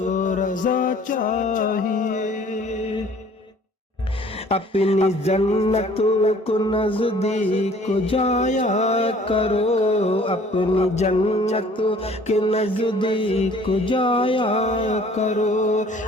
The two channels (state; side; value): normal; both; correlation 0.54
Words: رضا چاہیے۔ اپنی جنت کو نزدیک جایا کرو، اپنی جنت کے نزدیک جایا کرو،